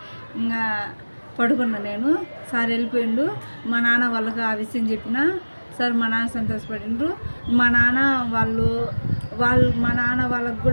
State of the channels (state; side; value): inverted; both; correlation -1.00